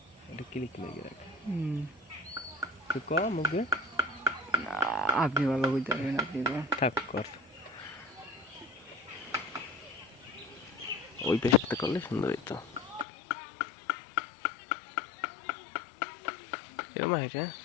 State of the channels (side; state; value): right; drops out; at 13.1 s